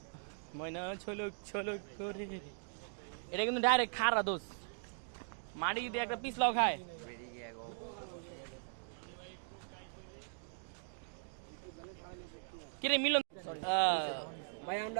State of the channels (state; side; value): silent; left; digital silence